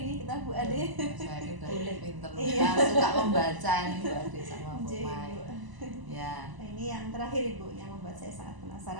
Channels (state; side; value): late; left; 1.0 ms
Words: kita, Bu Ade. Saya udah pinter, Iya. suka membaca nih Bu Ade sama Bu Iya, Mai. Ibu. Ya. Nah, ini yang terakhir, Ibu, yang membuat saya sangat